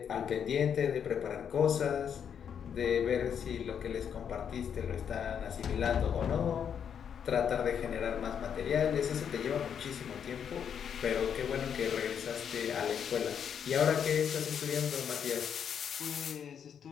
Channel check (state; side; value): quieter; right; 8.0 dB